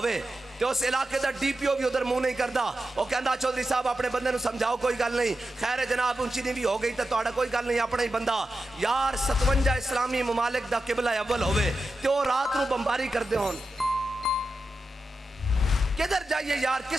तो उस इलाके का DPO भी उधर मुंह नहीं करता, वो कहता चौधरी साहब अपने बंदे नूं समझाओ कोई गल नहीं, खैर जनाब ऊंची नीवी हो गई तो तुहाडा कोई गल नहीं, अपना ही बंदा। यार 57 इस्लामी ममालिक दा किबला अव्वल होवे तो रात नूं बंबारी करदे होण, किधर जाइए यार,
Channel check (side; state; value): both; normal; correlation 0.90